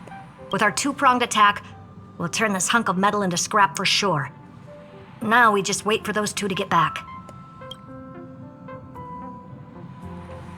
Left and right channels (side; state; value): both; identical; correlation 1.00